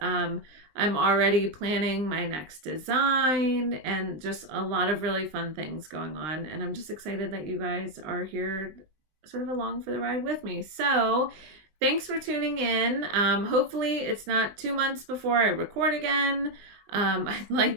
I'm already planning my next design and just a lot of really fun things going on. And I'm just excited that you guys are here sort of along for the ride with me. So thanks for tuning in. Hopefully it's not 2 months before I record again. I'd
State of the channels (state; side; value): late; left; 20 ms